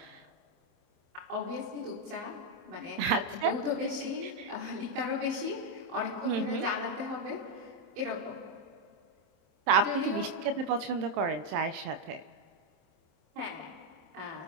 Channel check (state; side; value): late; left; 27 ms